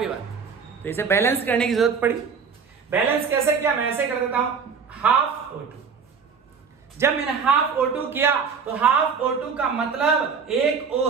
ये बात? तो इसे बैलेंस करने की जरूरत पड़ी। बैलेंस कैसे किया, मैं ऐसे कर देता हूं, हाफ O2। जब मैंने हाफ O2 किया तो हाफ O2 का मतलब एक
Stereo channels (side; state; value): left; quieter; 5.9 dB